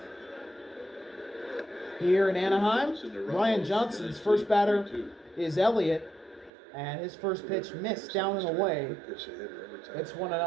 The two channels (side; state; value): left; drops out; at 6.5 s